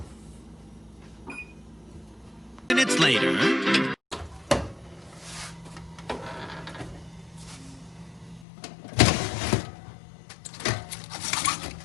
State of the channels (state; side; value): drops out; right; at 8.5 s